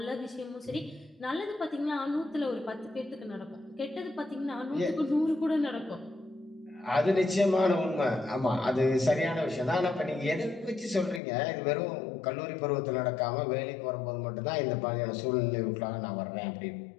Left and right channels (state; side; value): drops out; right; at 11.2 s